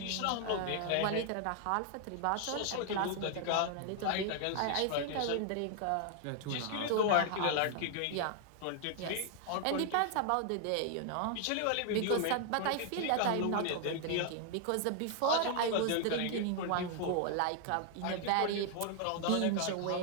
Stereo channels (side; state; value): both; different; correlation 0.00